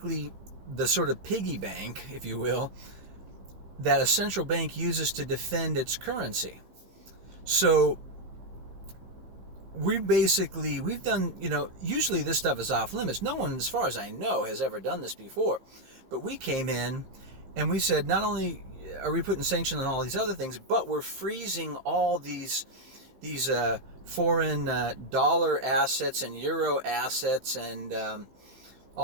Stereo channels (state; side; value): late; left; 15 ms